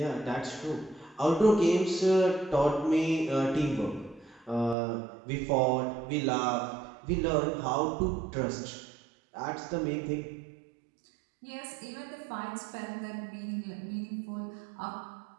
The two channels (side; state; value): left; drops out; at 4.8 s